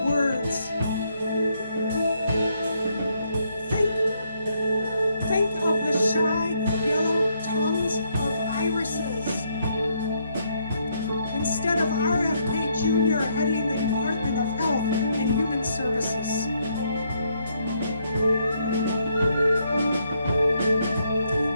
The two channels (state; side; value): inverted; both; correlation -0.74